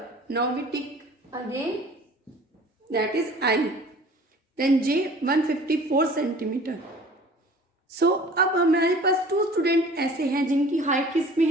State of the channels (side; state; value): both; normal; correlation 0.47